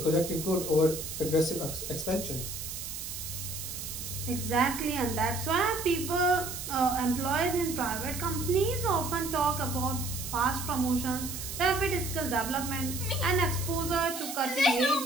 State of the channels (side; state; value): right; noise; hiss, 7 dB below the sound